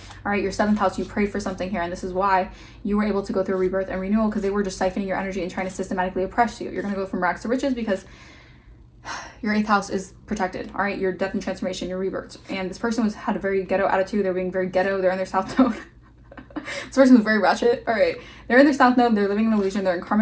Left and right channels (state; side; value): identical; both; correlation 1.00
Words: All right, your 7th house, you prayed for something here, and this is why you were able to go through a rebirth and renewal because they were just siphoning your energy and trying to systematically oppress you. You're going to go from rags to riches because your 8th house is protected. All right, your death and transformation, your rebirth. And this person had a very ghetto attitude. They're being very ghetto. They're in their South Node. This person was very ratchet. All right, they're in their South Node. They're living in illusion. They're in